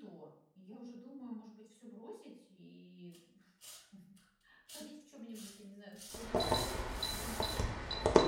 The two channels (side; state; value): both; identical; correlation 1.00